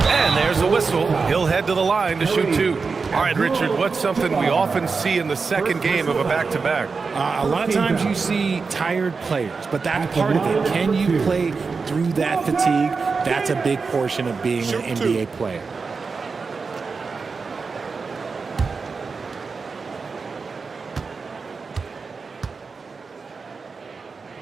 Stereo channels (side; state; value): left; quieter; 4.7 dB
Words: And there's a whistle. He'll head to the line to shoot 2. All right, Richard, what's something we often see in the second game of a back-to-back? A lot of times you see tired players, but that's part of it. Can you play through that fatigue? That's a big portion of being an NBA player.